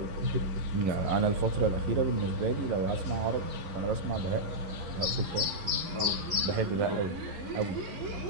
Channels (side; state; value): left; late; 11 ms